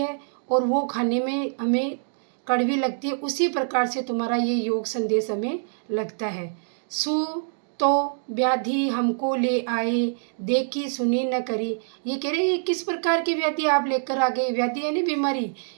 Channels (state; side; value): silent; left; digital silence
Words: और वो खाने में हमें कड़वी लगती है, उसी प्रकार से तुम्हारा ये योग संदेश हमें लगता है। सु तो व्याधि हमको ले आए, देखी सुनी न करी। ये कह रहे हैं ये किस प्रकार की व्याधि आप लेकर आ गए, व्याधि यानी बीमारी,